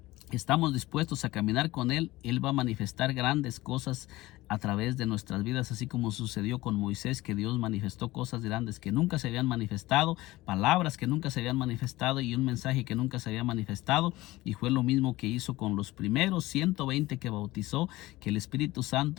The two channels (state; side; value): quieter; right; 18.5 dB